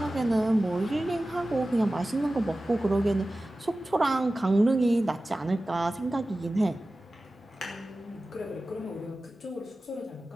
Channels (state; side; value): normal; both; correlation 0.96